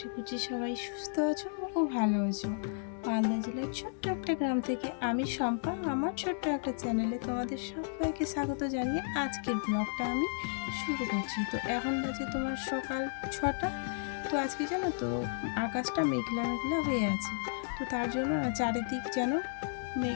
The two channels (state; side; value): silent; right; digital silence